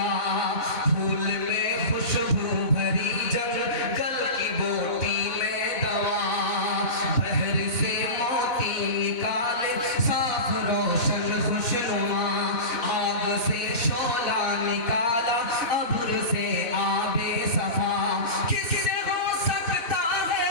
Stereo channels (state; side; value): late; right; 4.0 ms